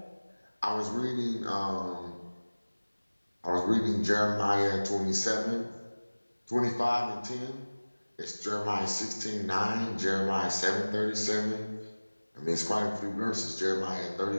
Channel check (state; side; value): inverted; both; correlation -1.00